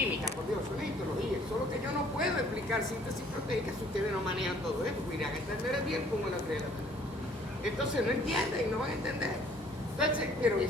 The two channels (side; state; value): both; normal; correlation 0.58